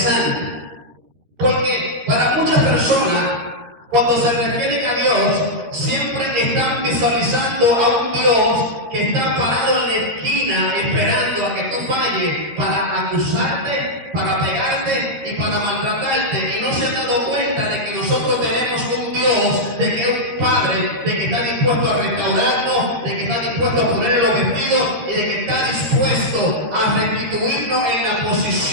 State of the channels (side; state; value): left; late; 13 ms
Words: porque para muchas personas, cuando se refieren a Dios, siempre están visualizando a un Dios que está parado en la esquina esperando a que tú falles para acusarte, para pegarte y para maltratarte, y no se han dado cuenta de que nosotros tenemos un Dios Dios de que es un Padre, de que está dispuesto a restaurarnos, de que está dispuesto a ponerle los vestidos y de que está dispuesto a restituirnos en la